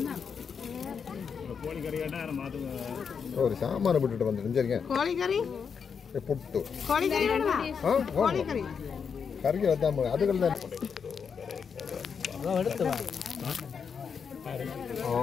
ஒரு சாம்பாரை விட்டுட்டு வந்துட்டு கோழிக்கறி புட்டு கோழிக்கறி கறிக்கு வந்தாம அதுகள் தான்.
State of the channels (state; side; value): quieter; right; 6.4 dB